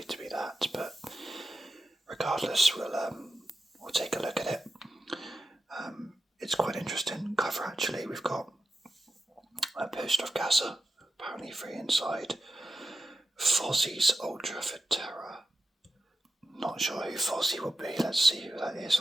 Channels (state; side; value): normal; both; correlation 0.91